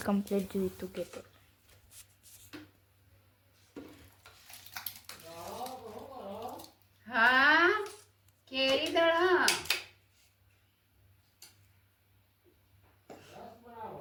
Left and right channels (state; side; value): identical; both; correlation 1.00